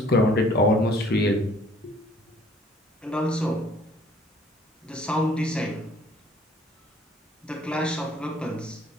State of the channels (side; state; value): both; normal; correlation 0.57